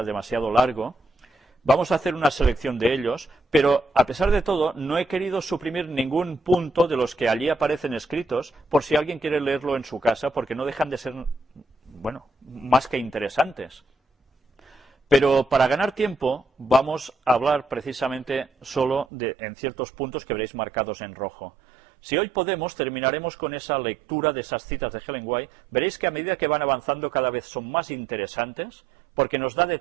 demasiado largo. Vamos a hacer una selección de ellos, pero a pesar de todo no he querido suprimir ningún punto de los que allí aparecen escritos por si alguien quiere leerlo en su casa, porque no dejan de ser, bueno, más que interesantes. Pero para ganar tiempo vamos a hablar precisamente solo en ciertos puntos que veréis marcados en rojo. Si hoy podemos, terminaremos con esa lectura de esas citas de Ellen White. Veréis que a medida que van avanzando cada vez son más interesantes, porque nos da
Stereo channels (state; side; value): drops out; left; at 19.1 s